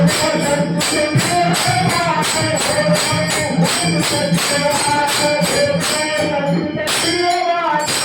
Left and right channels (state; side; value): identical; both; correlation 1.00